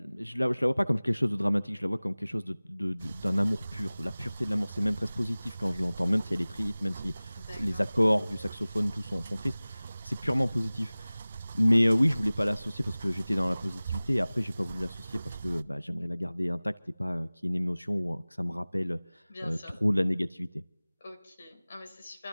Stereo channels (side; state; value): both; inverted; correlation -0.99